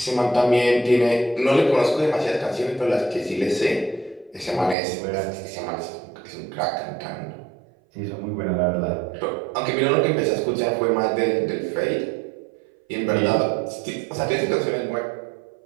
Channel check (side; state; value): left; drops out; at 4.8 s